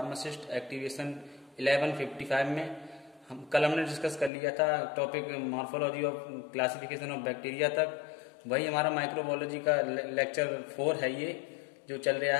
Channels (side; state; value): right; drops out; at 4.3 s